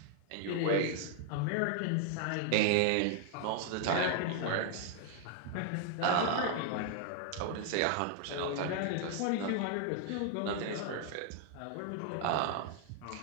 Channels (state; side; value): different; both; correlation 0.00